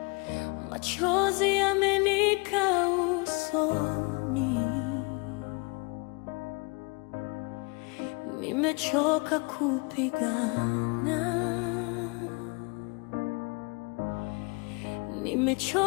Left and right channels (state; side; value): quieter; right; 30.3 dB